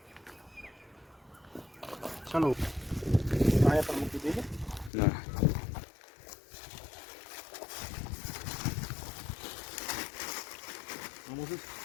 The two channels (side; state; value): right; drops out; at 4.9 s